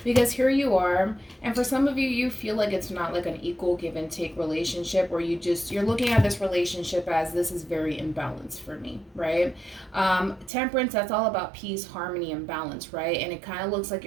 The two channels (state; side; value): drops out; left; at 10.5 s